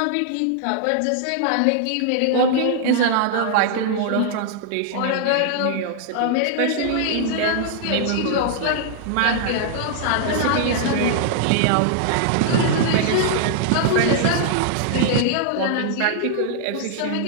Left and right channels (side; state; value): both; different; correlation -0.01